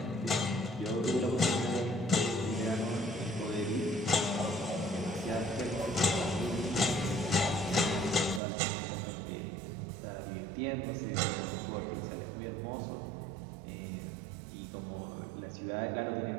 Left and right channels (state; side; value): drops out; left; at 8.4 s